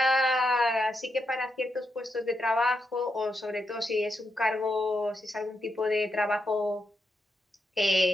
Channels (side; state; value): both; normal; correlation 0.84